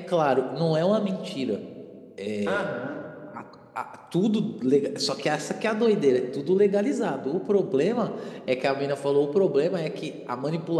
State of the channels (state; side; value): identical; both; correlation 1.00